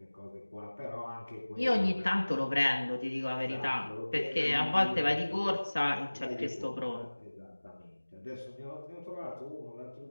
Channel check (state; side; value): inverted; both; correlation -1.00